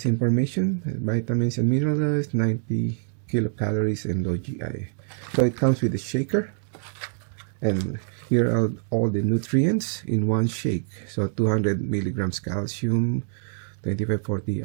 information: vitamins and minerals, 90 kilocalories and low GI. So it comes with a shaker, and here are all the nutrients in one shake. So 200 milligrams calcium,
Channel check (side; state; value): left; silent; digital silence